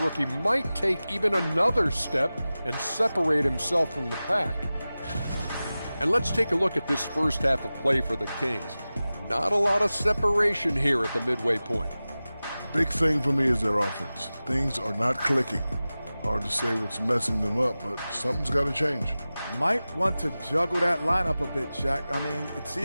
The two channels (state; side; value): inverted; both; correlation -0.96